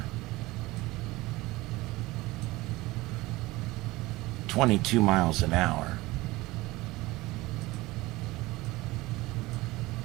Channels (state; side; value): quieter; left; 20.0 dB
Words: 22 miles an hour.